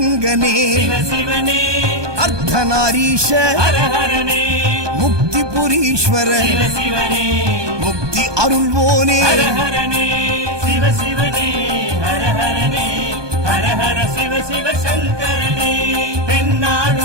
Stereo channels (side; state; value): left; late; 1.2 ms